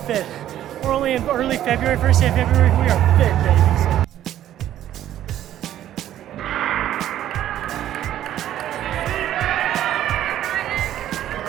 We're only in early February, first day of February. We are fit, baby.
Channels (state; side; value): quieter; left; 12.0 dB